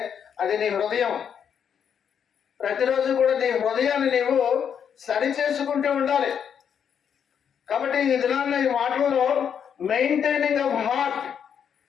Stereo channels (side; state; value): right; quieter; 7.9 dB